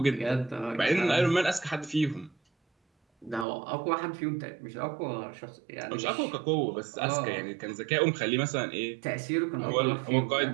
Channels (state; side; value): drops out; left; at 3.5 s